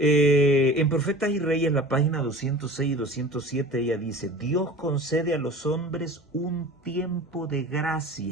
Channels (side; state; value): both; normal; correlation 0.39